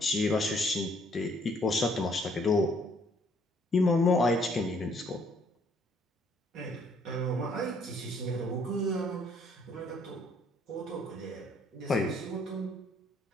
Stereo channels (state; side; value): normal; both; correlation 0.65